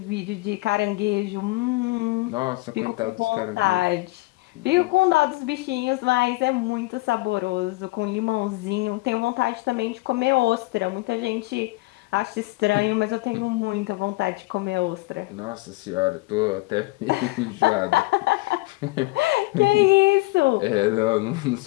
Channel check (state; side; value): quieter; right; 22.6 dB